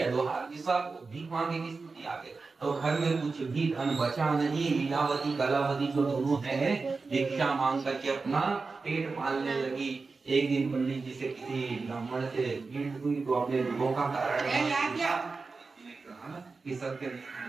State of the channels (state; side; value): quieter; left; 4.2 dB